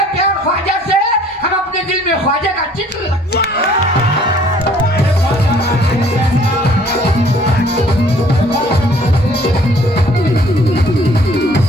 प्यार ख्वाजा से, हम अपने दिल में ख्वाजा का चित्र रखते हैं।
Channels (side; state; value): both; normal; correlation 0.57